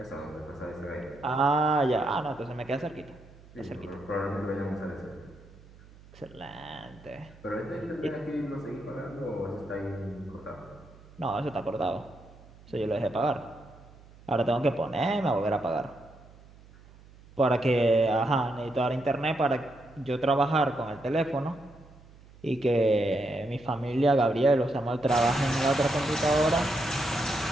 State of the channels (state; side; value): noise; right; hum, 23 dB below the sound